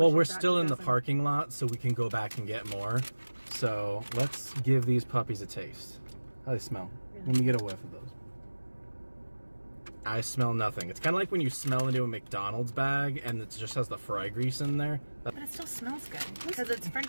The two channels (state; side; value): inverted; both; correlation -1.00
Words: we're still in the parking lot, so we can go back and get more. So let's give these puppies a taste. How do they smell? Really? Let me get a whiff of those. I smell nothing. It's kind of like when you smell into a McDonald's bag and it just has the fry grease in there. But it still smells good, because it's French